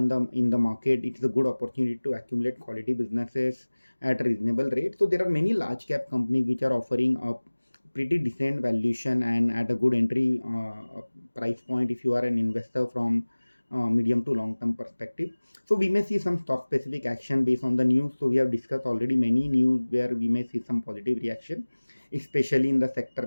the market, it is a good opportunity to accumulate quality businesses at a reasonable rate. So there are many large cap companies which are offering a pretty decent valuation and at a good entry price point if you are an investor from medium to long term perspective. So we may see some stock specific action based on the news. So we have discussed already many news where we may see some positive reaction, especially in the sector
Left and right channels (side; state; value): both; inverted; correlation -1.00